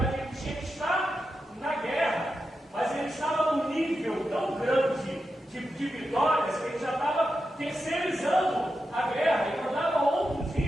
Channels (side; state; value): both; normal; correlation 0.89